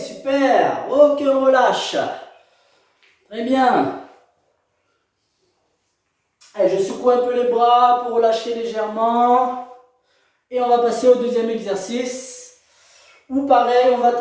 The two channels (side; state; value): both; identical; correlation 1.00